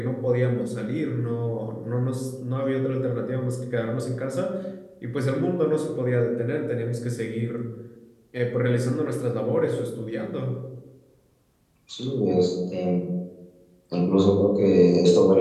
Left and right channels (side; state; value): both; identical; correlation 1.00